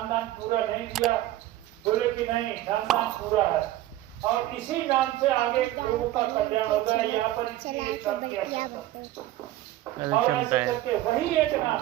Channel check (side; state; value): left; quieter; 15.1 dB